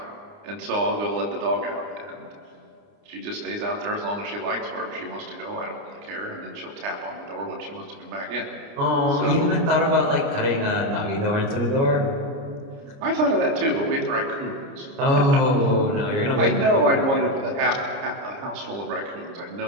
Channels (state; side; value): late; left; 29 ms